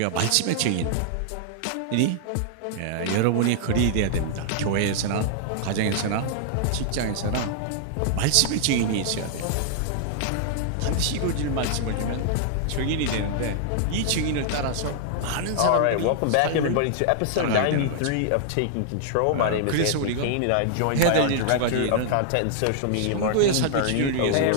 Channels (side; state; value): both; different; correlation -0.01